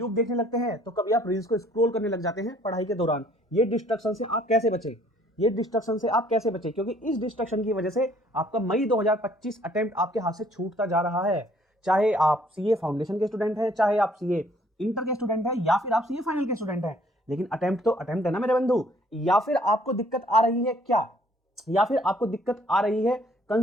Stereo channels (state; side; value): normal; both; correlation 0.60